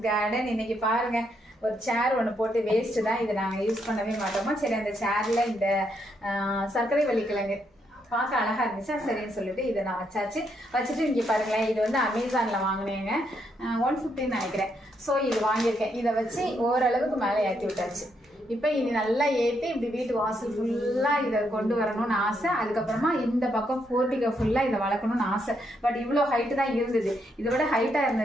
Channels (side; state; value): both; normal; correlation 0.77